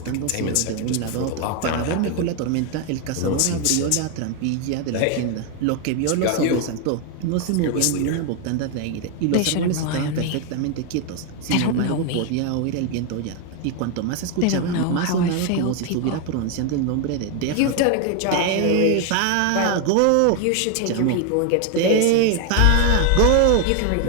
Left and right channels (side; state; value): both; different; correlation 0.01